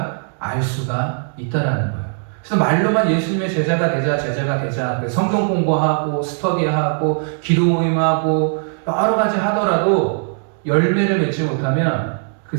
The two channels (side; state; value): left; silent; 57 dB below the other